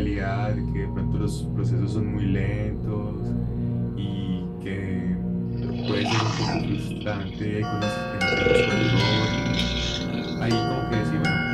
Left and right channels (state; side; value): identical; both; correlation 1.00